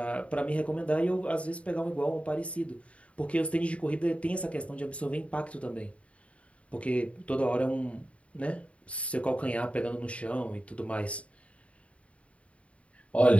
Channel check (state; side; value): late; right; 0.063 ms